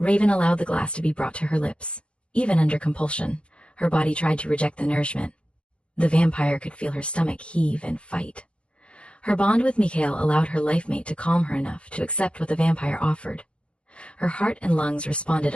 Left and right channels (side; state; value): right; late; 0.058 ms